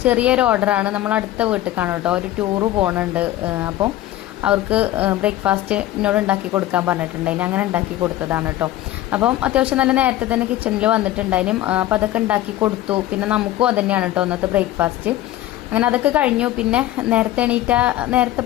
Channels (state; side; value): quieter; right; 14.5 dB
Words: ചെറിയൊരു ഓർഡറാണ്. നമ്മൾ അടുത്ത വീട്ടിലേക്കാണ് കേട്ടോ, ഒരു ടൂറ് പോകുന്നുണ്ട്. അപ്പം അവർക്ക് ബ്രേക്ക്ഫാസ്റ്റ് എന്നോട് ഉണ്ടാക്കി കൊടുക്കാൻ പറഞ്ഞിട്ടുണ്ടായിന്. അങ്ങനെ ഉണ്ടാക്കി കൊടുത്തതാണ് കേട്ടോ. അപ്പം അത്യാവശ്യം നല്ല നേരത്തെ തന്നെ കിച്ചണിൽ വന്നിട്ടുണ്ടായിനും. അപ്പം അതൊക്കെ ഉണ്ടാക്കി കൊടുത്തു. പിന്നെ നമുക്കും അത് തന്നെയാണ് കേട്ടോ ഇന്നത്തെ ബ്രേക്ക്ഫാസ്റ്റ്. അങ്ങനെ അതൊക്കെ കഴിഞ്ഞു. പിന്നെ നേരത്തെ